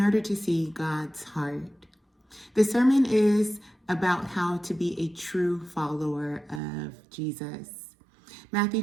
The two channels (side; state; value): left; drops out; at 6.6 s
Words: order to see God's heart. The sermon is about how to be a true follower of Jesus. Matthew